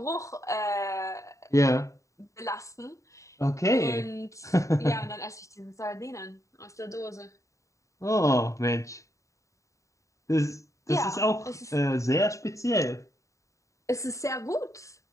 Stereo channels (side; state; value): right; late; 0.15 ms